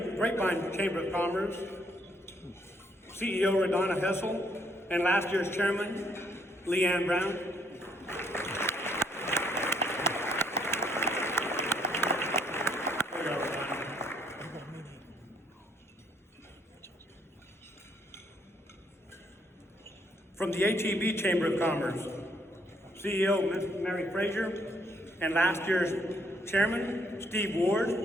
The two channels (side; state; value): both; normal; correlation 0.69